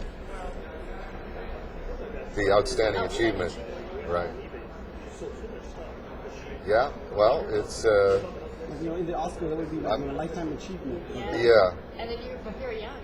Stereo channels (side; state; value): both; identical; correlation 1.00